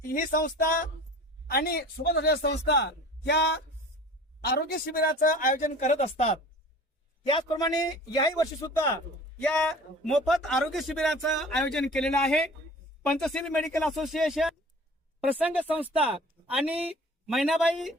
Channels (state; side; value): normal; both; correlation 0.43